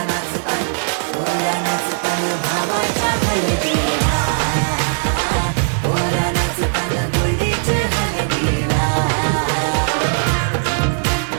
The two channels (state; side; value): silent; left; digital silence